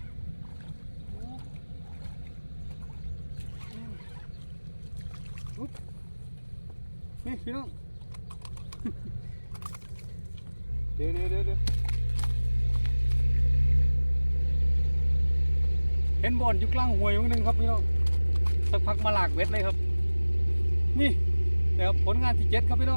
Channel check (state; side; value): inverted; both; correlation -1.00